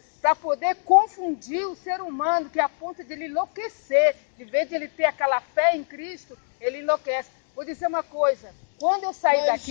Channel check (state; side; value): silent; right; digital silence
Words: para poder confundir o ser humano, que é a ponto de ele enlouquecer. De vez de ele ter aquela fé em Cristo, ele enlouquece. Vou dizer uma coisa, quando eu saí